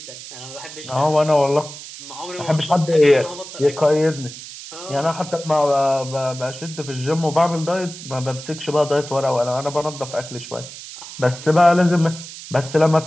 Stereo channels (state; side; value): noise; right; hiss, 13 dB below the sound